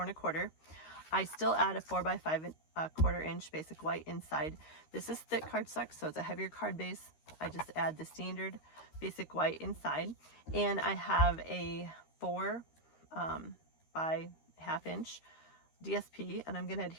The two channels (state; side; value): late; right; 13 ms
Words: I still add a 4 by 5.25 inch basic white inside. This is thick cardstock, so it's a heavier card base. I just add the standard basic white inside, and I have a 4 by 1/2 inch DSP, and I'm going to